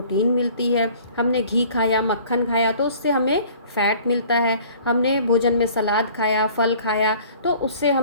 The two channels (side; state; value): both; inverted; correlation -0.51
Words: मिलती है, हमने घी खाया, मक्खन खाया तो उससे हमें फैट मिलता है, हमने भोजन में सलाद खाया, फल खाया तो उससे